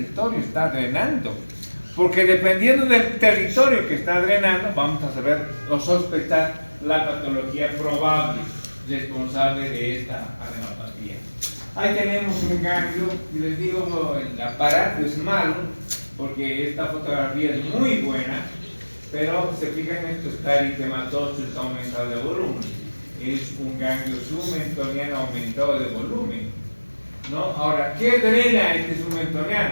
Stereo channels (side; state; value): both; inverted; correlation -1.00